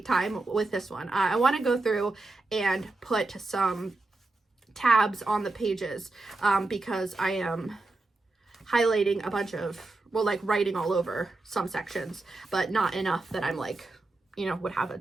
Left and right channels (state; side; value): quieter; left; 3.1 dB